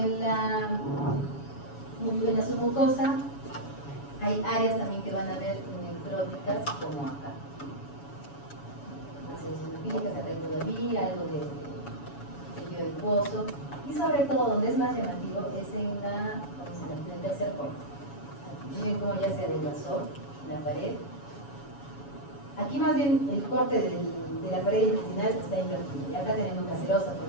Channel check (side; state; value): right; late; 7.1 ms